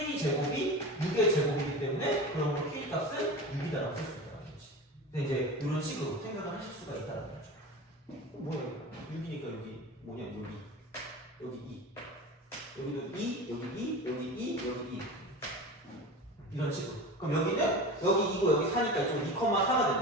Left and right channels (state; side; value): normal; both; correlation 0.31